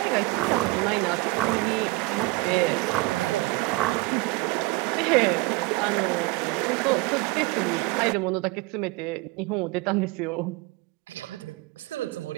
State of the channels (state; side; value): quieter; left; 22.7 dB